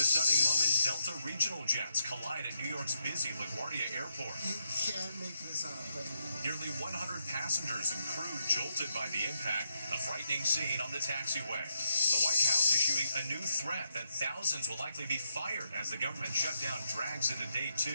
stunning moment, Delta regional jets collide at New York's busy LaGuardia Airport. You can't make this up, baby. Nearly 100 passengers and crew jolted by the impact, a frightening scene on the taxiway. The White House issuing a new threat that thousands will likely be fired as the government shutdown drags into day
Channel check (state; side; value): inverted; both; correlation -0.80